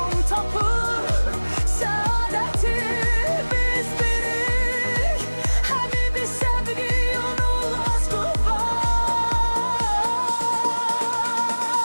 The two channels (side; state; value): both; inverted; correlation -1.00